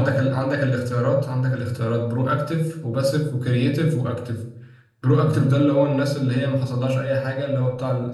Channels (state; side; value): identical; both; correlation 1.00